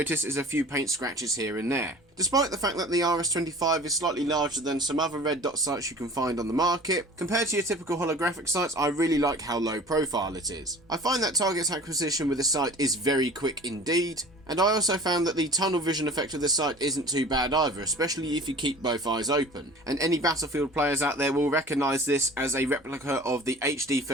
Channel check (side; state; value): both; normal; correlation 0.43